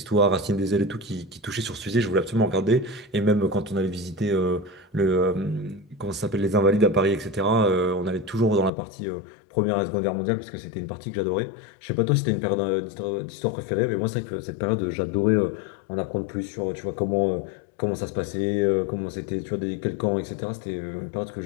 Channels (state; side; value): drops out; right; at 8.7 s